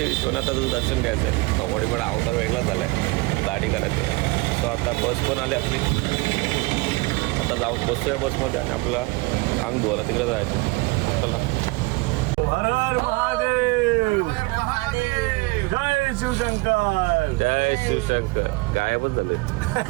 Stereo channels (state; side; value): quieter; left; 24.7 dB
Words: विश्वनाथाचं दर्शन घ्यायचं आहे. कबड्डी पण अवतार वेगळा झाला आहे, गाडी करायचं. सो आता बस पण आली आपली. आता जाऊन बसतोय बसमध्ये आणि आपला अंग धुवायला तिकडे जायचं. चला. हर हर महादेव, जय शिवशंकर, जय शिवशंकर. गायबच झाले.